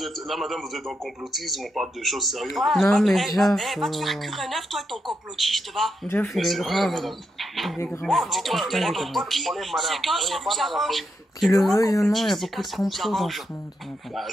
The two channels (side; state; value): both; normal; correlation 0.83